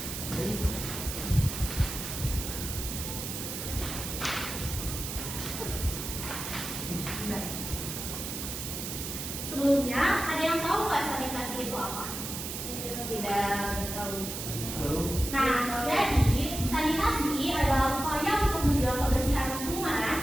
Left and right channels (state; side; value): noise; right; hiss, 6 dB below the sound